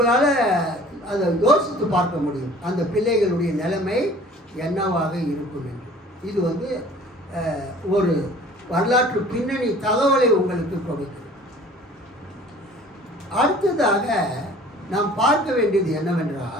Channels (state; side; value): normal; both; correlation 0.49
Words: அதை யோசித்து பார்க்க முடியும் அந்த பிள்ளைகளுடைய நிலைமை என்னவாக இருக்கும் என்று. இது வந்து ஒரு வரலாற்று பின்னணி தகவலை உங்களுக்கு கொடுக்கிறது. அடுத்ததாக நாம் பார்க்க வேண்டியது